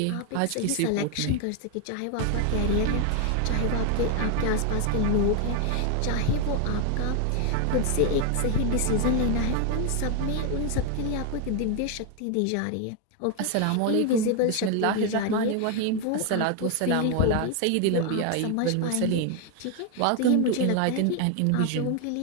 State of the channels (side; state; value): both; different; correlation 0.01